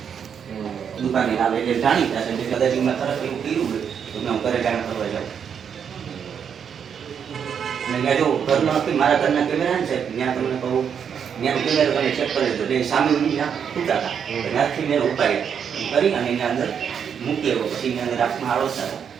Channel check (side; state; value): left; quieter; 7.6 dB